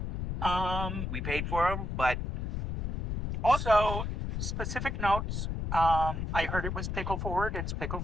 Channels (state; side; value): noise; left; rumble, 2 dB below the sound